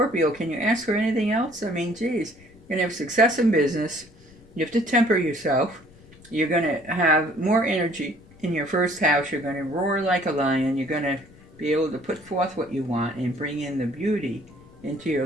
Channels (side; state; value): left; noise; rumble, 25 dB below the sound